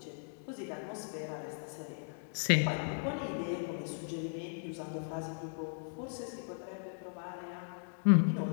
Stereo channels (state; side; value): silent; right; digital silence